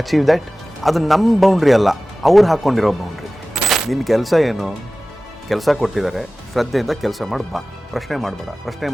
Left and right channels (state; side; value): normal; both; correlation 0.97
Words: achieve that? ಅದು ನಮ್ಮ ಬೌಂಡ್ರಿ ಅಲ್ಲ, ಅವ್ರು ಹಾಕ್ಕೊಂಡಿರೋ ಬೌಂಡ್ರಿ. ನಿನ್ನ ಕೆಲಸ ಏನು? ಕೆಲಸ ಕೊಟ್ಟಿದ್ದಾರೆ, ಶ್ರದ್ಧೆಯಿಂದ ಕೆಲಸ ಮಾಡಿ ಬಾ, ಪ್ರಶ್ನೆ ಮಾಡಬೇಡ. ಪ್ರಶ್ನೆ